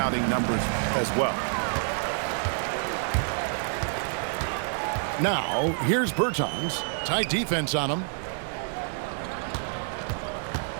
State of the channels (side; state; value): left; silent; 60 dB below the other